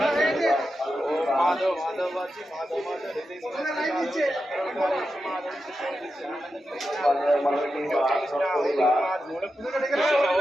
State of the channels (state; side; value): normal; both; correlation 0.89